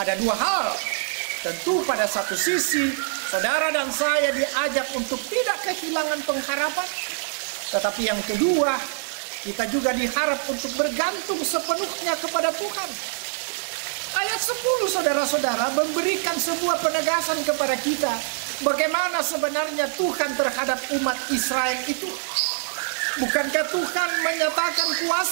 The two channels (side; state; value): left; silent; digital silence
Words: dua hal. Tentu pada satu sisi saudara dan saya diajak untuk tidak kehilangan pengharapan. Tetapi yang kedua, kita juga diharap untuk bergantung sepenuhnya kepada Tuhan. Ayat 10 saudara-saudara memberikan sebuah penegasan kepada kita bagaimana sebenarnya Tuhan terhadap umat Israel itu. Bukankah Tuhan menyatakan